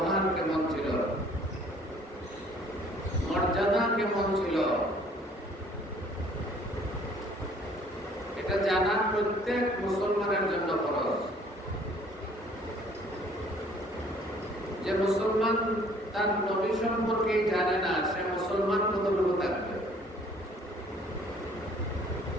কেমন ছিল, প্রত্যেক মুসলমানের জন্য ফরজ। যে মুসলমান তার নবী সম্পর্কে জানে না, সে মুসলমান কতটুকু থাকবে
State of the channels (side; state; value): both; normal; correlation 0.57